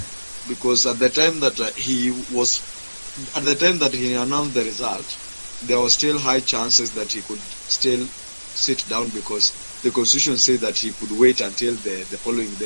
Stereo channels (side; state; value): both; inverted; correlation -1.00